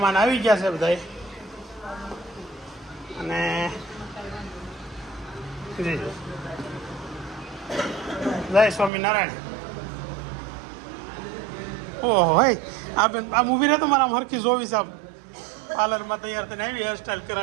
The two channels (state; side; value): drops out; left; at 8.9 s